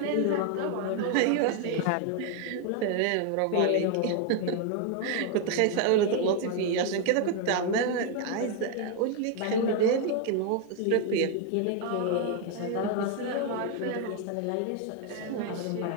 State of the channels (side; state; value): both; different; correlation 0.01